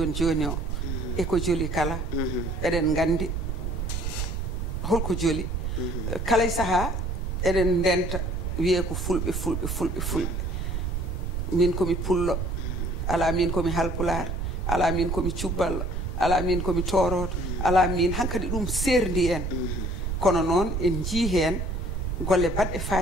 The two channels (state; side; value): noise; right; rumble, 2 dB below the sound